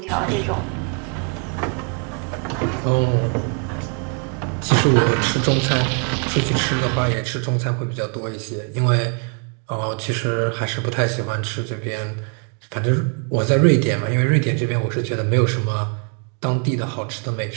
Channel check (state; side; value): quieter; left; 39.5 dB